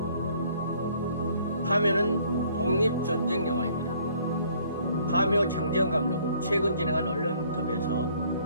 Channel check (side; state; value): both; inverted; correlation -0.60